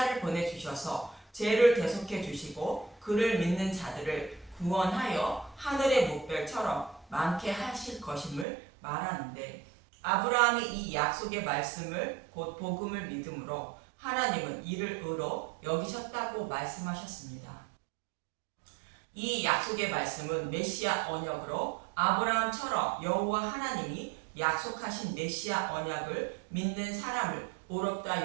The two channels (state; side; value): drops out; left; at 8.5 s